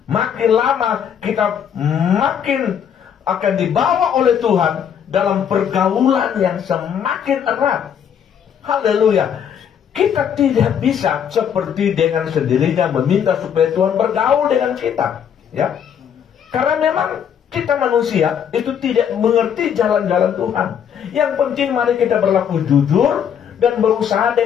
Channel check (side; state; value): right; quieter; 8.3 dB